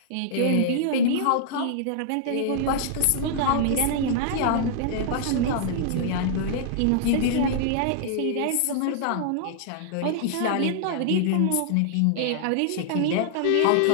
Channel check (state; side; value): different; both; correlation -0.01